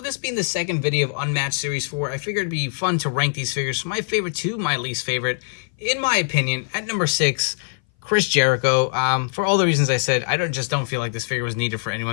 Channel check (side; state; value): right; silent; 59 dB below the other